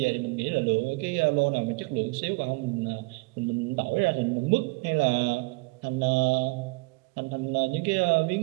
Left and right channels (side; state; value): left; quieter; 27.5 dB